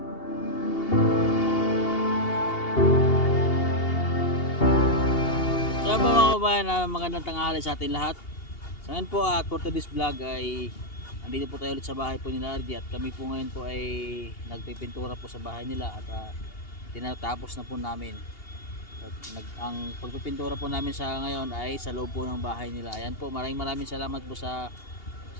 Kaya po mga kabayan, magandang tanghali sa atin lahat. So ngayon po for today's vlog ay andito po tayo ulit sa bahay po nila RJ at kami po ngayon po ay nagpipintura po sa bahay nila at tinatapos na po namin. At ang pagpipintura po namin sa ngayon ay sa loob po ng bahay nila. Ayan po, maraming salamat po sa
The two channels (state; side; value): late; right; 2.8 ms